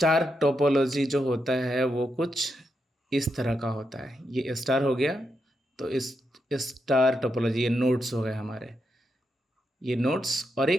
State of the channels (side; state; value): both; normal; correlation 0.84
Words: topology जो होता है वो कुछ इस तरह का होता है। ये स्टार हो गया, तो इस स्टार टोपोलॉजी, ये नोड्स हो गए हमारे, ये नोड्स, और